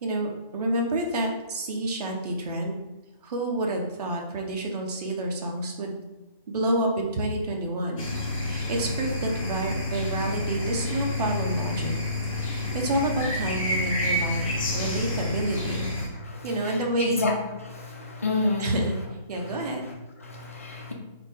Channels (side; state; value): both; inverted; correlation -0.52